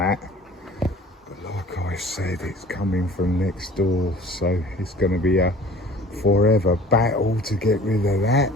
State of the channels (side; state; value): both; normal; correlation 0.47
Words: But like I said, it's coming from next door, so it's going to be a forever battle to get rid of that.